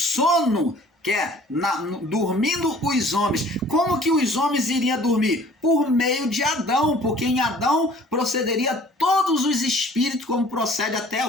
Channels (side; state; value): both; normal; correlation 0.51